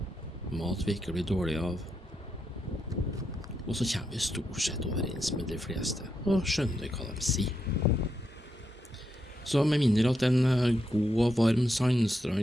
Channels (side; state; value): both; normal; correlation 0.82